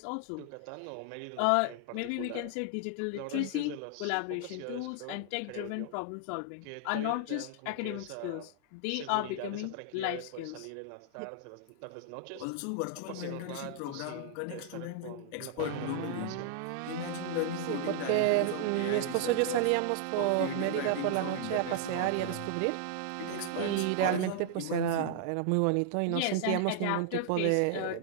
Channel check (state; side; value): different; both; correlation 0.00